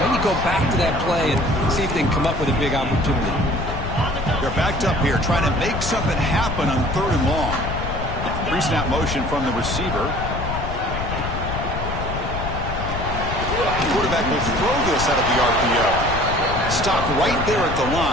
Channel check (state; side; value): noise; left; rumble, 5 dB below the sound